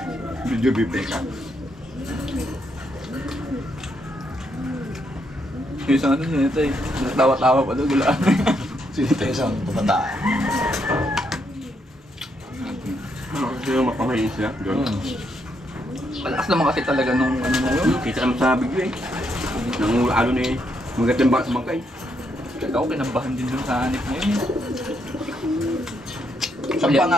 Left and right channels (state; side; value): normal; both; correlation 0.77